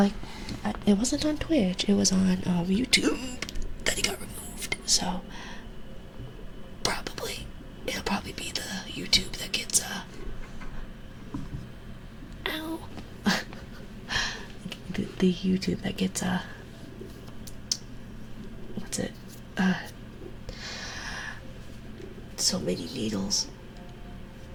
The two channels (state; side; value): identical; both; correlation 1.00